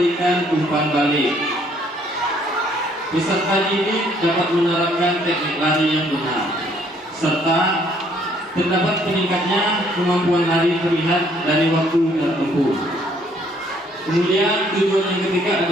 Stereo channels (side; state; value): both; normal; correlation 0.64